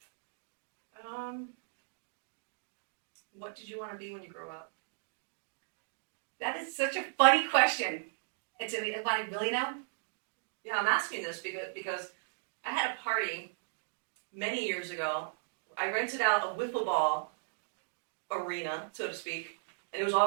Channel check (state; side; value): silent; left; digital silence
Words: What did you want to be when you grow up? That is such a funny question. It's I really know? Yeah, I'm asking this because I had a party many years ago. I rented out a wiffle ball arena, so to speak, and it was